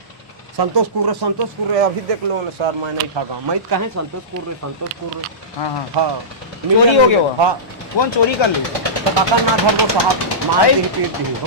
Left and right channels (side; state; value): both; normal; correlation -0.19